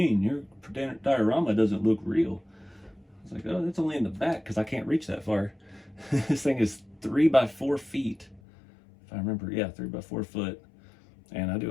Your diorama doesn't look real. I was like, oh, that's only in the back because I can't reach that far. This thing is 3 by 4 feet. If I remember, yeah, 3 by 4 foot. And I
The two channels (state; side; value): drops out; right; at 8.4 s